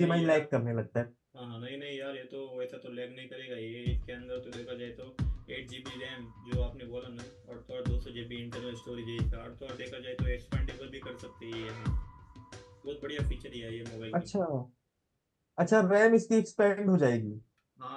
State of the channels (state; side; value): identical; both; correlation 1.00